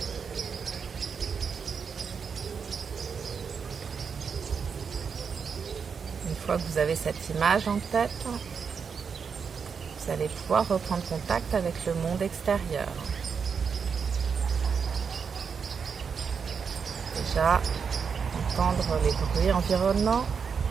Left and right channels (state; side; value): quieter; left; 6.2 dB